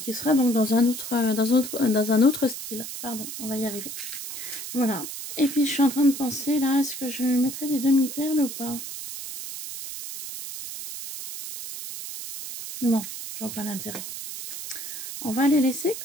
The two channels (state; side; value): noise; right; hiss, 8 dB below the sound